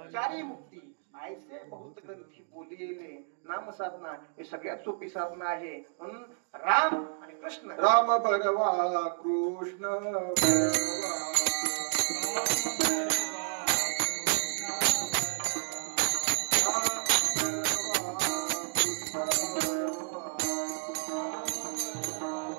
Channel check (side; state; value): left; silent; digital silence